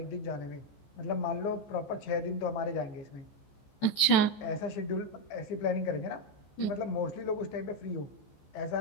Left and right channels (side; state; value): right; late; 14 ms